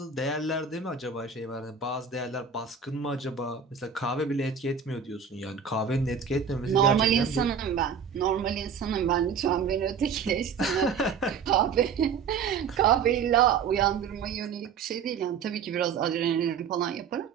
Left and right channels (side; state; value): left; quieter; 6.5 dB